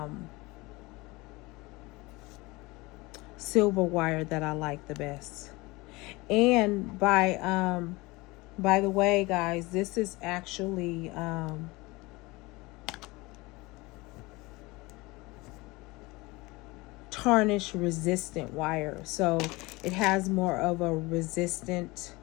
silver wire that I like the best. And by the way, guys, this is actually tarnish resistant wire. So it has more of a resistant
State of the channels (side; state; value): right; quieter; 23.0 dB